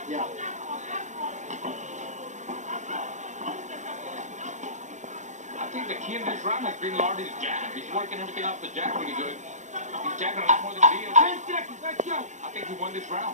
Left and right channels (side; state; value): left; late; 0.35 ms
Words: Yeah. I think the key in this round has been Lartey's jab. He's working everything off the jab really good. He's jabbing a lot more than Diaz. 10 seconds, let's go. I think he won this